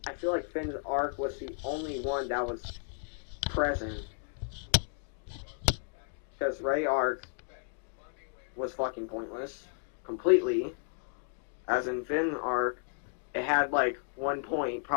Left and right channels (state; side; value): silent; right; 56 dB below the other